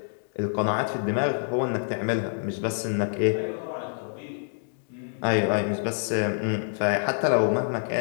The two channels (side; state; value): right; silent; digital silence